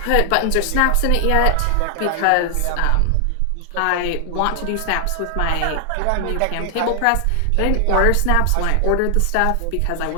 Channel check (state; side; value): different; both; correlation 0.00